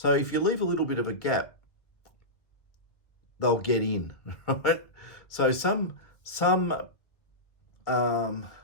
if you leave a little bit of a gap, they'll get in, right? So some AH,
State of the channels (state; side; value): late; right; 1.8 ms